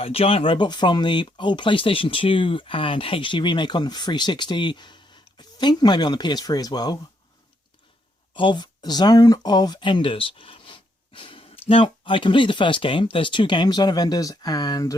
giant robot from the old PlayStation 2 and HD remake on the 360, I think maybe on the PS3 as well, of Zone of Enders. Now, I completed the first game. There's two games, Zone of Enders and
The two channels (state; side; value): normal; both; correlation 0.75